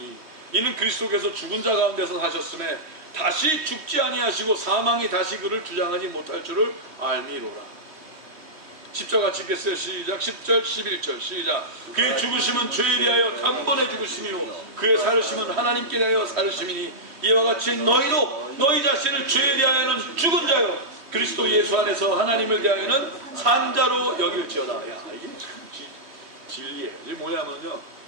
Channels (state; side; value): late; left; 3.1 ms